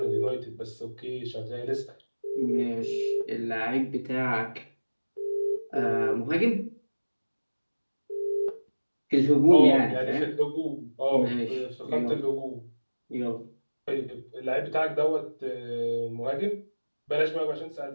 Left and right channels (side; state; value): both; inverted; correlation -1.00